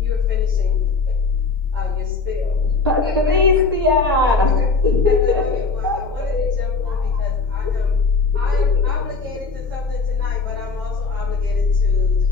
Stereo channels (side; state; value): right; quieter; 4.4 dB